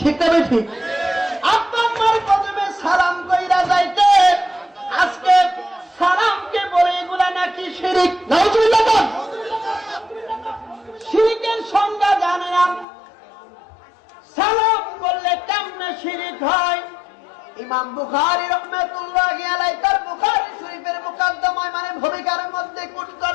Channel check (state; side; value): drops out; right; at 12.9 s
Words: না ঠিক? আব্বা আম্মার কদমে সালাম কইরা যাইতেন। আজকে সালামকে বলে এগুলা নাকি শিরিক। নাউজুবিল্লাহ। শিরিকের সংজ্ঞা জানে না। সালাম করলে কেমনে শিরিক হয়? ইমাম বুখারী রাহমাতুল্লাহি আলাইহি তার বুখারী শরীফের মুকদ্দমায় মানে ভূমিকার মধ্যে কোট